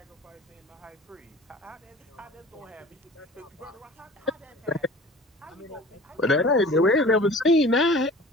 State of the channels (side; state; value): both; normal; correlation 0.44